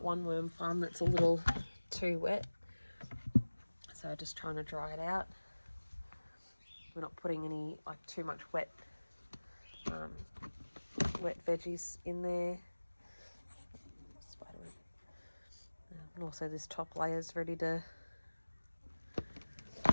one worm farm that's a little too wet, so just trying to dry it out. We're not putting any too much wet veggies in there. Spiderweb. And also this top layer is ready to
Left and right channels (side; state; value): both; inverted; correlation -1.00